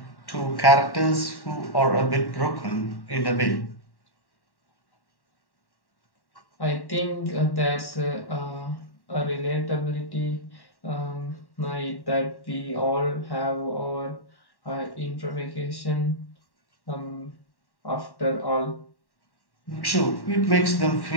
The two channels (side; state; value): right; late; 1.1 ms